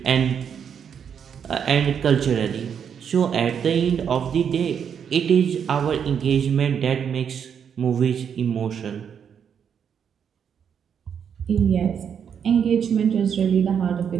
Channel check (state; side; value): quieter; left; 7.7 dB